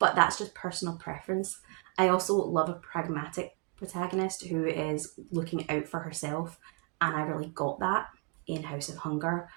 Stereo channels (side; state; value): left; quieter; 30.9 dB